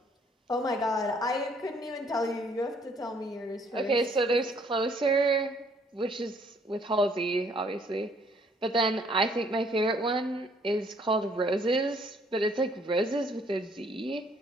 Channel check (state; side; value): normal; both; correlation 0.63